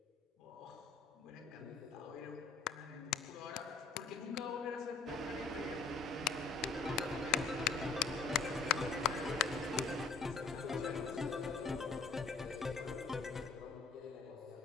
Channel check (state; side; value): quieter; right; 4.3 dB